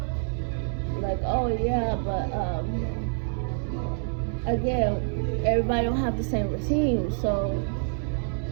Like, oh yeah, but again, everybody don't have the same routine, so,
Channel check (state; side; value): silent; left; 60 dB below the other